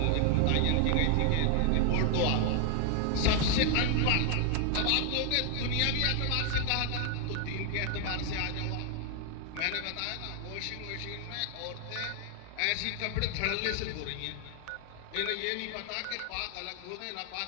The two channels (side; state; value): both; different; correlation 0.00